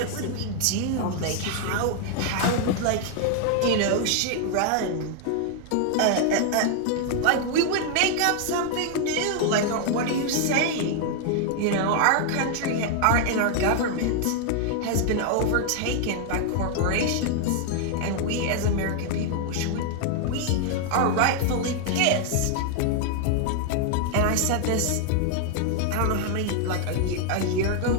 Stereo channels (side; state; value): both; different; correlation 0.00